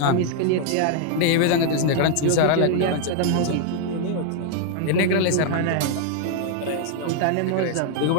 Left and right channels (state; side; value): different; both; correlation 0.00